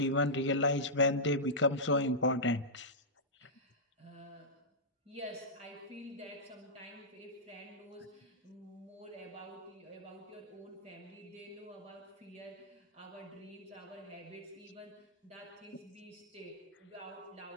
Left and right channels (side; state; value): both; normal; correlation -0.12